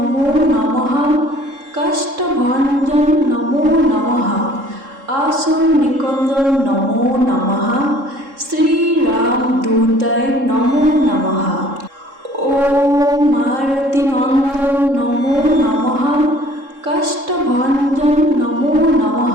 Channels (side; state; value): left; late; 3.7 ms